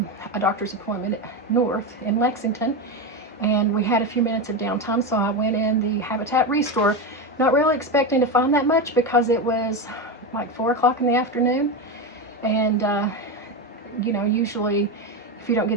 a doctor's appointment north in Lexington, and we had a few minutes of downtime, so I went in the Habitat Restore, not really expecting to find that much because it was like 4 o'clock in the afternoon, and you know, usually if you don't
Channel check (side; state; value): both; normal; correlation 0.15